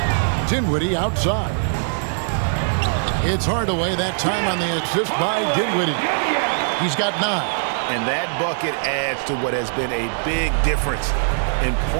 Dinwiddie outside. It's Hardaway that time on the assist by Dinwiddie. He's got 9. And that bucket adds to what has been a big difference in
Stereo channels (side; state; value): left; silent; digital silence